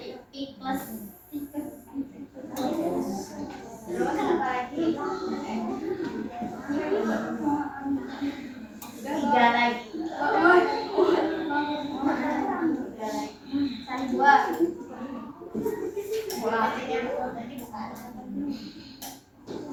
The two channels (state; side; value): identical; both; correlation 1.00